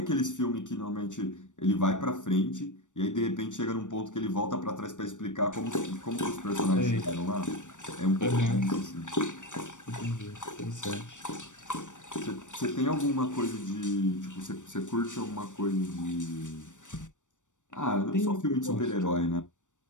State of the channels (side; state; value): right; late; 0.86 ms